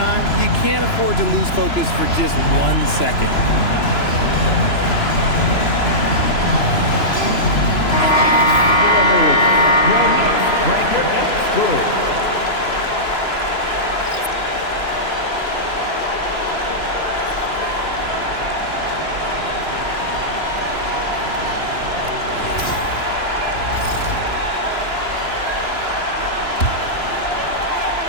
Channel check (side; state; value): right; late; 2.9 ms